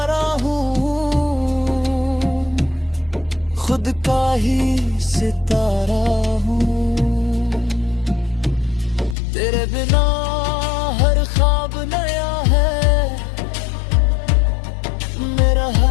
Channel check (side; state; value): right; drops out; at 9.2 s